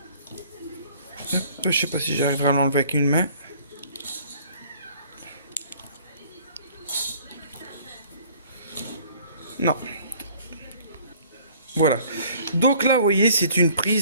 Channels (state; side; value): inverted; both; correlation -0.54